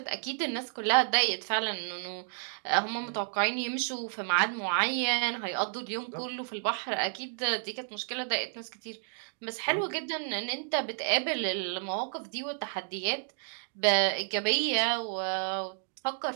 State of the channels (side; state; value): left; silent; 57 dB below the other